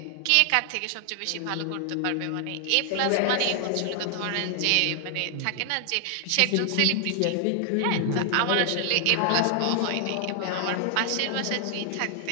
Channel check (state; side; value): different; both; correlation 0.00